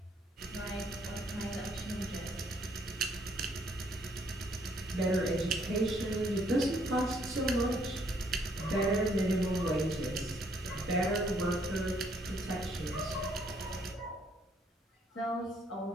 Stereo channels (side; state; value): both; normal; correlation 0.67